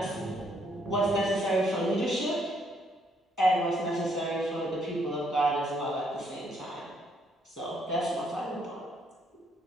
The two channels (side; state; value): both; normal; correlation 0.71